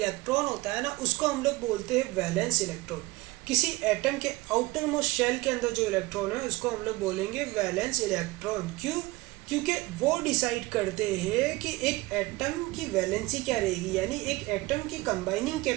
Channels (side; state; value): left; quieter; 21.2 dB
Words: होता है ना, उसको हम लोग बोलते हैं वैलेंस इलेक्ट्रॉन। किसी एटम के आउटर मोस्ट शेल के अंदर जो इलेक्ट्रॉन है उसको हम लोग बोलेंगे वैलेंस इलेक्ट्रॉन। क्यों, क्योंकि वो डिसाइड करते हैं कि एक एटम की वैलेंसी क्या रहेगी, यानी एक एटम की कंबाइनिंग